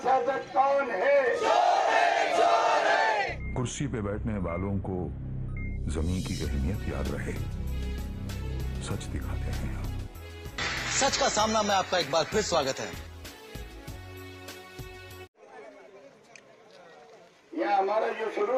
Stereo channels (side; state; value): both; identical; correlation 1.00